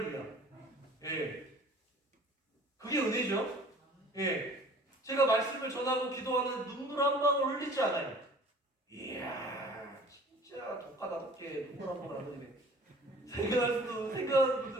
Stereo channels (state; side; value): normal; both; correlation 0.48